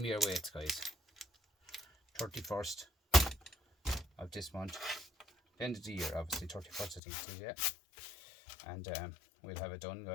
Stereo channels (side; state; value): right; drops out; at 7.0 s